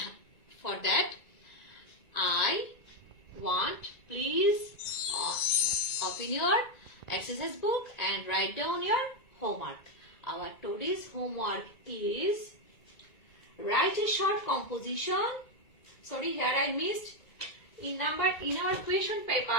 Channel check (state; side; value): late; right; 2.0 ms